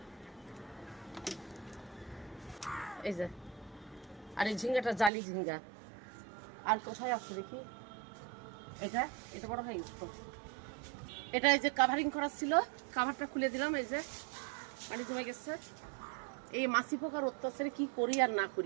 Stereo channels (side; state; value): left; drops out; at 5.1 s